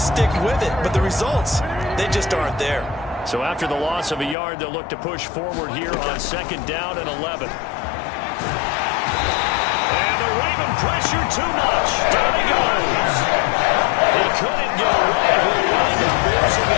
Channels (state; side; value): drops out; right; at 4.4 s